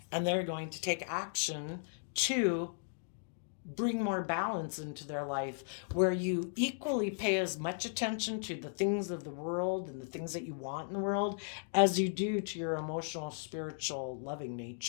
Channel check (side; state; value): right; silent; digital silence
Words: and they're going to take action to bring more balance into their life, where you equally pay as much attention to the things of the world and the things that you want in the world as you do to your emotional, spiritual, loving